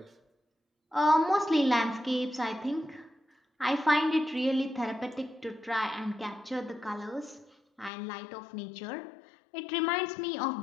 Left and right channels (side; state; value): right; drops out; at 7.9 s